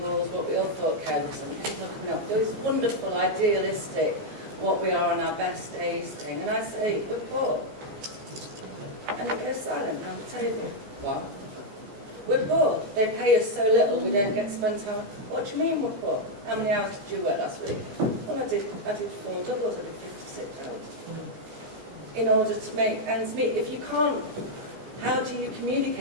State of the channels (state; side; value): late; left; 15 ms